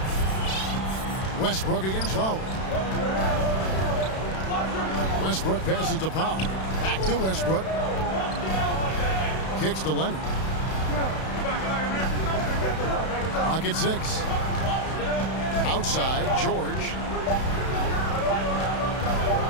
Westbrook against Lowry. Westbrook passes to Powell. Back to Westbrook. Kicks to Leonard. Clock at 6. Outside, George.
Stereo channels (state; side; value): late; right; 32 ms